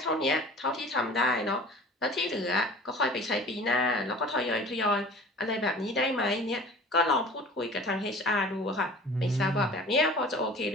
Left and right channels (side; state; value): both; normal; correlation 0.44